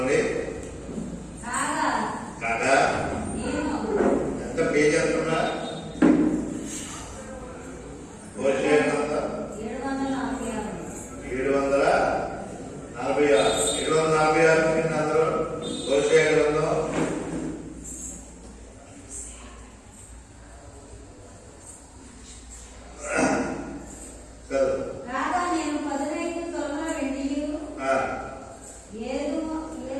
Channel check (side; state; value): both; identical; correlation 1.00